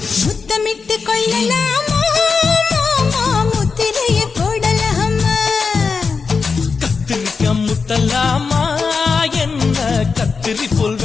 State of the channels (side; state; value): right; quieter; 5.0 dB